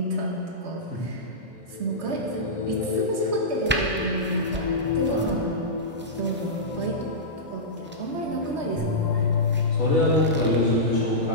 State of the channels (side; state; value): both; normal; correlation -0.14